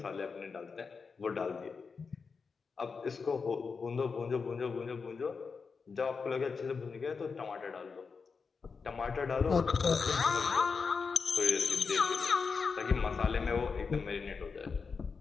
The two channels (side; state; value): right; quieter; 5.1 dB